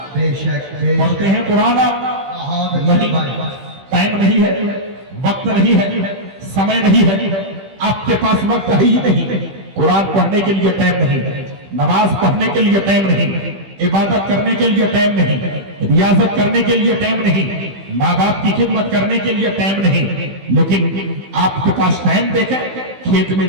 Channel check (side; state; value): left; late; 15 ms